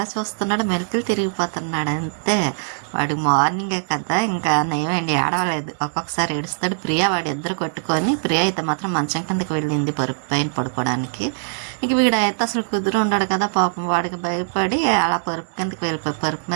చూస్తున్నాడు, మెలికలు తిరిగిపోతున్నాడు అంతే. వాడు మార్నింగే కదా, ఇంకా నయమండి, ఏడవలేదు. ఒక్కొక్కసారి ఏడుస్తాడు. ప్రియా వాడు ఇద్దరు కొట్టుకొని, ప్రియా అయితే మాత్రం మంచం కిందకి వెళ్ళింది పరుపు పైన పడుకోవడానికి. ఇంక వీడైతే అసలు కుదురు ఉన్నాడు కదా పాపం, వాడికి భయపడి అలా పరుపు కిందకి వెళ్ళిపోయి పరుపు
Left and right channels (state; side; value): silent; left; digital silence